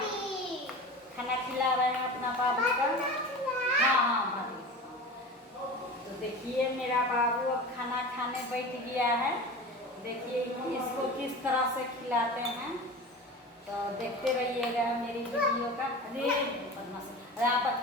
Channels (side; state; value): both; normal; correlation 0.32